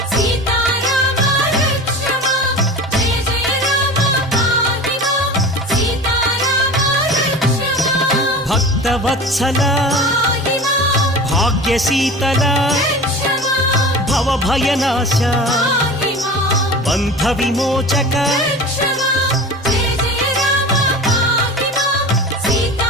భక్తవత్సల భాగ్యశీతల భవభయనాశ బంధ విమోచక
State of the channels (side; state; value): both; normal; correlation 0.34